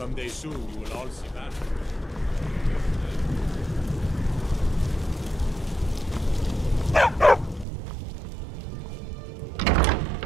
soon you will all see that.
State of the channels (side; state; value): left; drops out; at 7.7 s